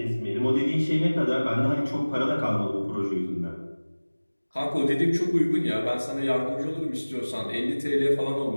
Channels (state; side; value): inverted; both; correlation -1.00